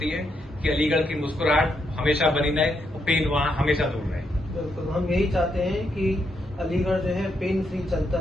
है कि अलीगढ़ की मुस्कुराहट हमेशा बनी रहे और पेन वहाँ हमेशा दूर रहे। बिल्कुल, हम यही चाहते हैं कि अलीगढ़ जो है पेन फ्री चलता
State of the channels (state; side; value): normal; both; correlation 0.79